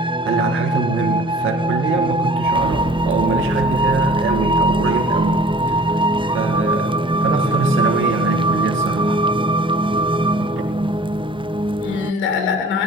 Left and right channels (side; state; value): both; normal; correlation 0.48